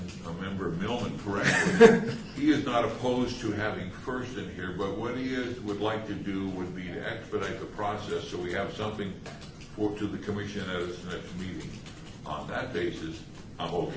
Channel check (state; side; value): identical; both; correlation 1.00